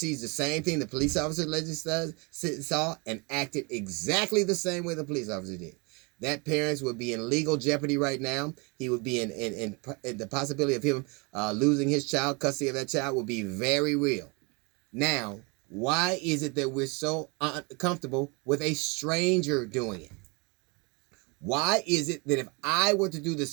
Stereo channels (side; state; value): left; quieter; 30.1 dB